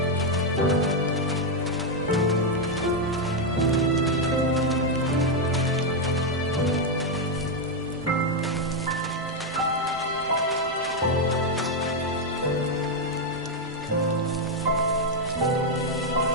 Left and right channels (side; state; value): both; normal; correlation 0.03